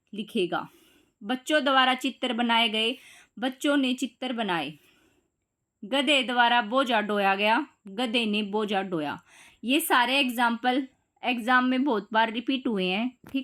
लिखेगा। बच्चों द्वारा चित्र बनाए गए, बच्चों ने चित्र बनाए। गधे द्वारा बोझा ढोया गया, गधे ने बोझा ढोया। ये सारे एग्जाम्पल एग्जाम में बहुत बार रिपीट हुए हैं,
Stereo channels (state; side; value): identical; both; correlation 1.00